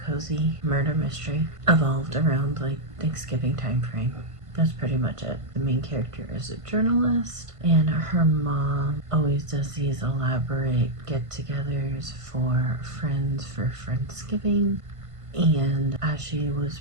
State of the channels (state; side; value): late; left; 1.5 ms